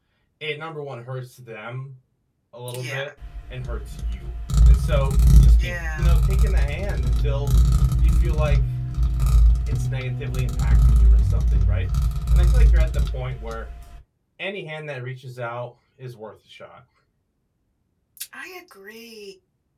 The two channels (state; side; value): identical; both; correlation 1.00